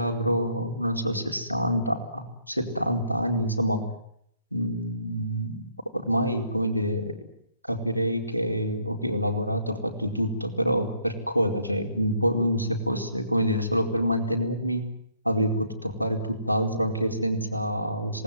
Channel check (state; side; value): inverted; both; correlation -0.66